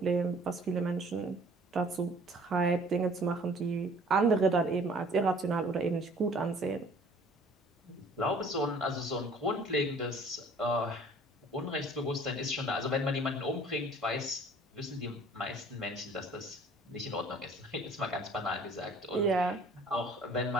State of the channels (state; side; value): normal; both; correlation 0.52